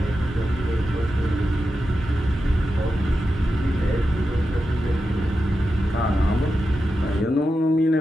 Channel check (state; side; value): normal; both; correlation 0.90